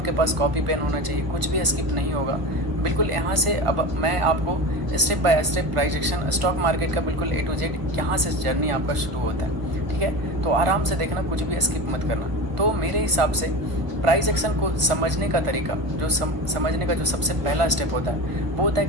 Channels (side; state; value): left; late; 1.0 ms